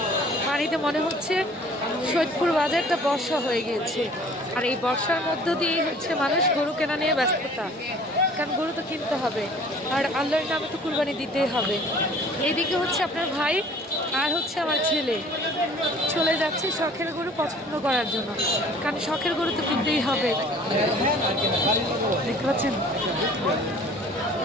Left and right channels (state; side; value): normal; both; correlation 0.51